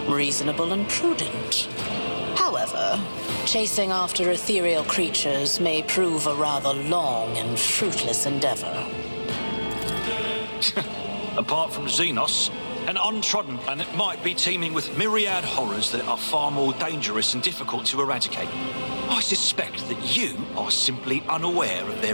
Reasonable and prudent. However, chasing after ethereal creatures may prove a rather long and fruitless endeavor. Apart from Xenos, An untrodden planet might be teeming with myriad horrors that are far more dangerous and difficult to eradicate. I suspect that you are simply unaware of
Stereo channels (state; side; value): inverted; both; correlation -1.00